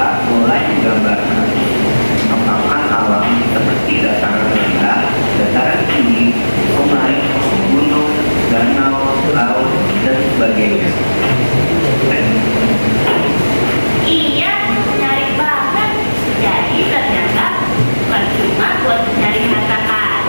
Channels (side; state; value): both; inverted; correlation -1.00